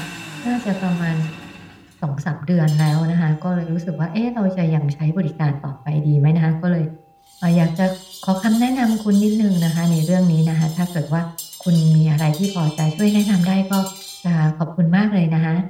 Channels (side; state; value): both; identical; correlation 1.00